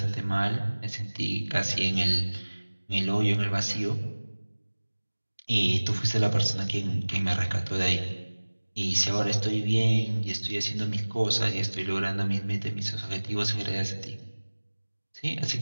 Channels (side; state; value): both; inverted; correlation -1.00